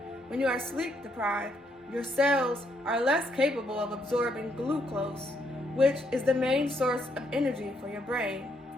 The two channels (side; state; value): both; normal; correlation 0.74